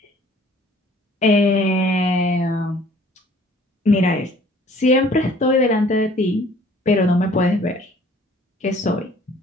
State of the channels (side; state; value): both; normal; correlation 0.55